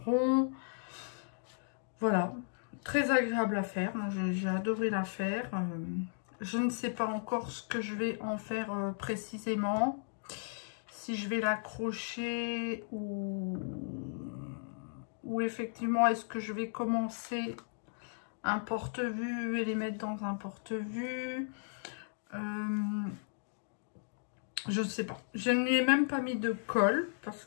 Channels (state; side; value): silent; right; digital silence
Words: rond. Voilà, très agréable à faire. Moi j'ai adoré la faire. Je ne sais pas encore ce que je vais en faire précisément. Si je vais l'accrocher ou effectivement est-ce que je vais commencer un porte-vue et les mettre dans un porte-vue. Je ne sais pas. Je ne lui ai même pas mis de colle parce